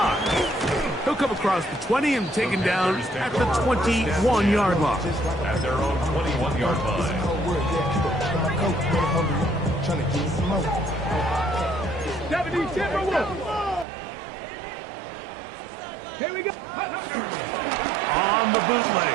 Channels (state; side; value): drops out; left; at 13.9 s